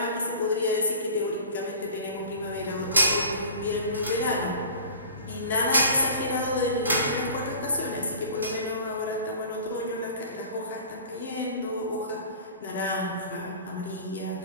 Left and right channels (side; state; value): both; inverted; correlation -0.42